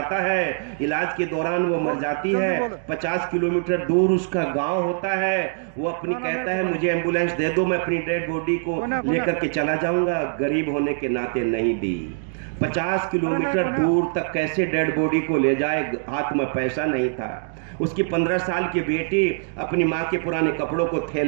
है। इलाज के दौरान वो मर जाती है। 50 किलोमीटर दूर उसका गांव होता है। वो अपनी कहता है मुझे एम्बुलेंस दे दो, मैं अपनी डेड बॉडी को लेकर के चला जाऊंगा। गरीब होने के नाते नहीं दी। 50 किलोमीटर दूर तक कैसे डेड बॉडी को ले जाए? हाथ में पैसा नहीं था। उसकी 15 साल की बेटी अपनी माँ के पुराने कपड़ों को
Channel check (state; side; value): silent; left; digital silence